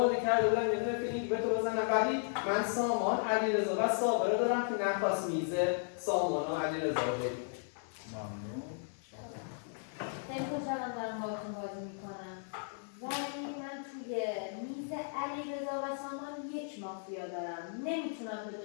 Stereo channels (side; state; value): right; silent; 54 dB below the other